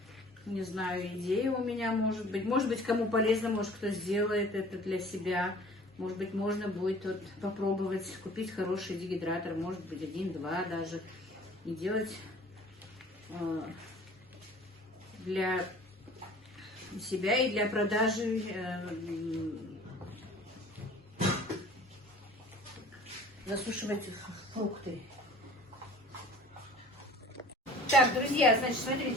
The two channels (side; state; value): both; normal; correlation 0.48